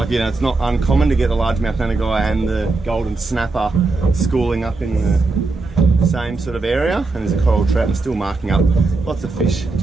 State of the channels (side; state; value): left; quieter; 3.6 dB